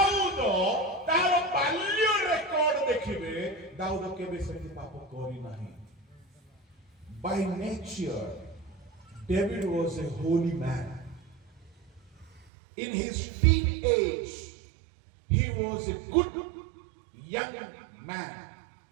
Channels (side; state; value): left; drops out; at 12.5 s